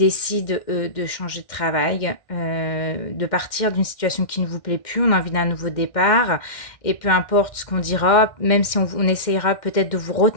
de changer de travail, de partir d'une situation qui ne vous plaît plus. On a envie d'un nouveau départ. Et peu importe ce qu'on dira, même si on essayera peut-être de vous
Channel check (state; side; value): late; right; 2.1 ms